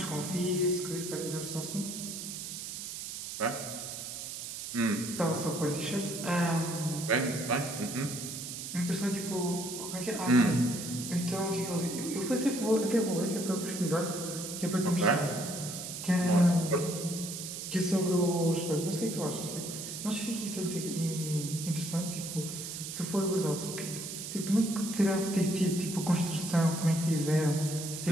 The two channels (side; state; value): right; noise; hiss, 7 dB below the sound